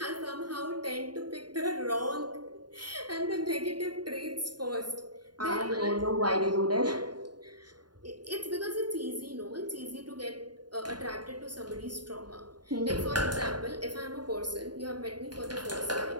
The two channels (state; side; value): late; left; 0.70 ms